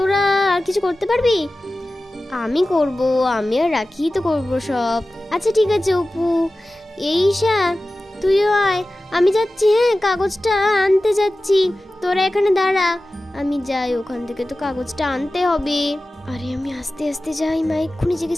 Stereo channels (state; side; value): normal; both; correlation 0.96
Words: আর কিছু করতে পারবি? আমি করব, আমি আর রাখি তো করবো সব। আচ্ছা ঠিক আছে অপু। এই ঈশা, তুইও আয়, আমি যাচ্ছি। হ্যাঁ কাগজটা আনতে যাচ্ছি, তোরা এখানে দাঁড়া, আমি যাই, ওখান থেকে তো কাগজটা আনতে হবে। আরে আমি আস্তে আস্তে যাই, মা এক্ষুনি জেগে